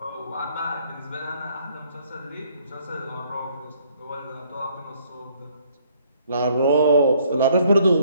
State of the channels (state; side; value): inverted; both; correlation -0.64